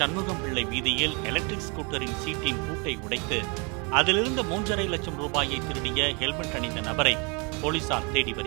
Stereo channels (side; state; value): left; quieter; 32.2 dB